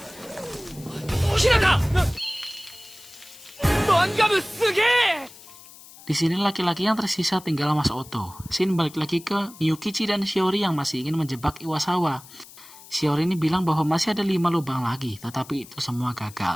Di sini laki-laki yang tersisa tinggal Mas Oto. Shin balik lagi ke Miyukichi dan Shiori yang masih ingin menjebak Iwasawa. Shiori ini bilang bahwa masih ada 5 lubang lagi, tetapi itu semua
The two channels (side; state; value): left; noise; hiss, 20 dB below the sound